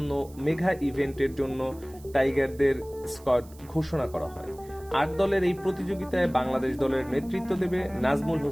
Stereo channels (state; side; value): noise; right; hiss, 24 dB below the sound